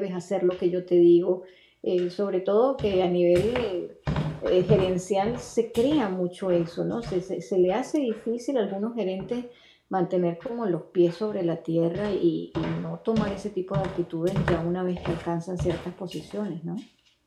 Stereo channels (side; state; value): both; identical; correlation 1.00